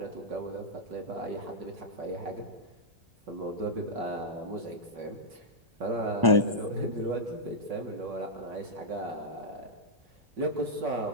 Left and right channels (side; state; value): left; late; 1.1 ms